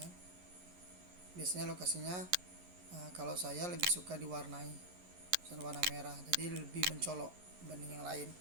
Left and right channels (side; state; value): left; late; 11 ms